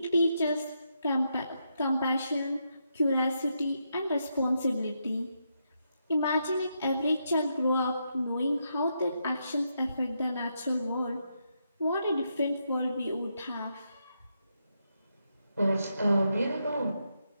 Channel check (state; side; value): inverted; both; correlation -0.82